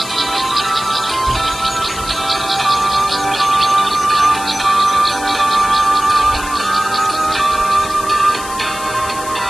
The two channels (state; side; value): noise; left; hiss, 12 dB below the sound